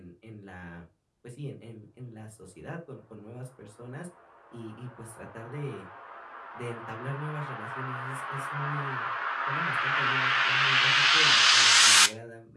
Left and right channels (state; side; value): identical; both; correlation 1.00